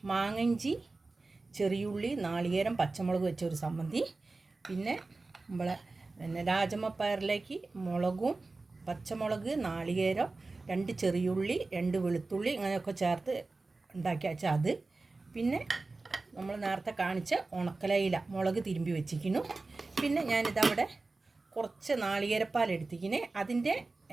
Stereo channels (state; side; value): quieter; left; 3.5 dB